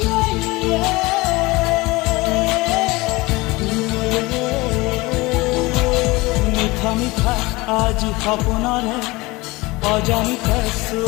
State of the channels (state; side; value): quieter; right; 22.3 dB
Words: মিঠা মিঠা আজি সপোনৰে অজানিতে